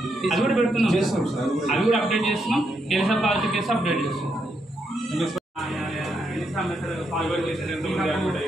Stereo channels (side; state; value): both; normal; correlation 0.80